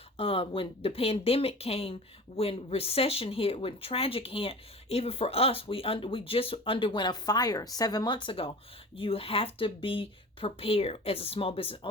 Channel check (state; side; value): normal; both; correlation 0.37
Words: when the pandemic came, when recession hit, when tragic hit, even for us, we just underwent a fire 7 months ago. You have to be prepared as a small business